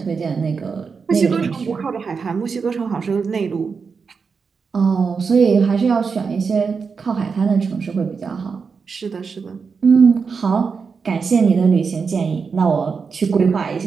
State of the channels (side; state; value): left; quieter; 5.4 dB